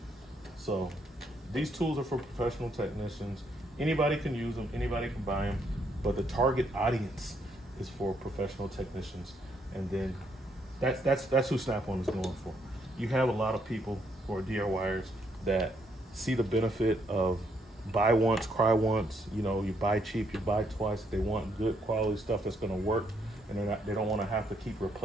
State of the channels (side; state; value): both; normal; correlation 0.73